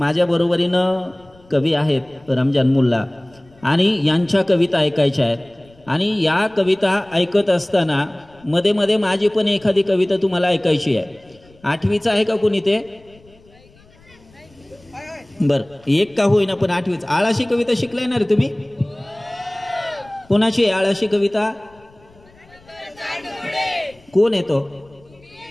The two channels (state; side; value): noise; left; rumble, 28 dB below the sound